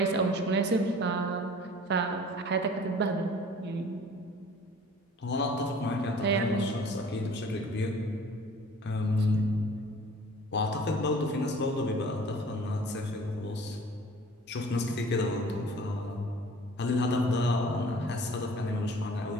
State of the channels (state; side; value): normal; both; correlation 0.48